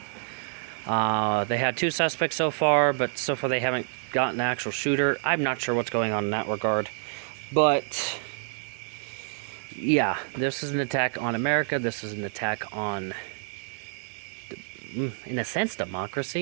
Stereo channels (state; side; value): silent; left; 60 dB below the other